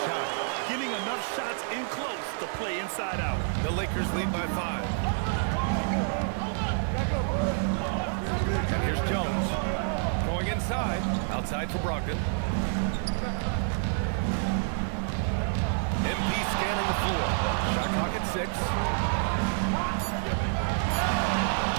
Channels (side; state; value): left; silent; digital silence